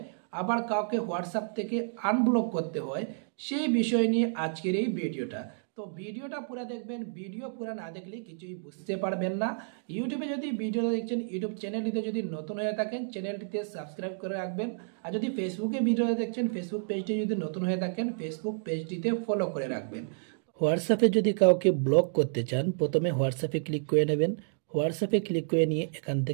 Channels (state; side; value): silent; left; digital silence